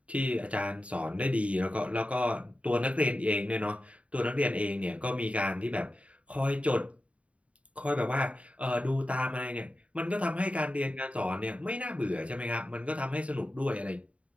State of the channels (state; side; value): late; left; 0.065 ms